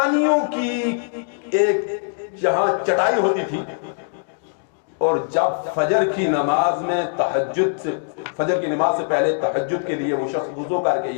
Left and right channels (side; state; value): right; silent; digital silence